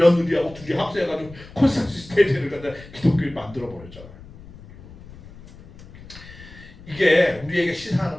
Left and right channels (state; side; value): noise; left; rumble, 19 dB below the sound